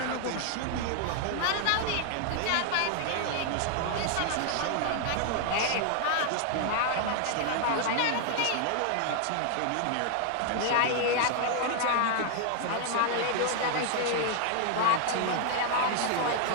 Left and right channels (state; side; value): different; both; correlation 0.00